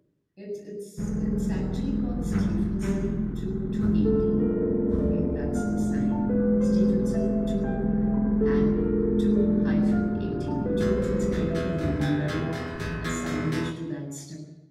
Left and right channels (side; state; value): both; identical; correlation 1.00